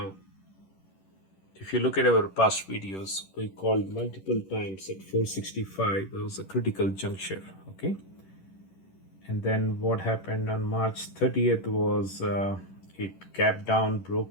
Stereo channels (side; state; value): right; late; 10 ms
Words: if you look at our past videos, we called multiple times at 465. It was a critical juncture. Okay. And then what happened on March 30th was it gapped down,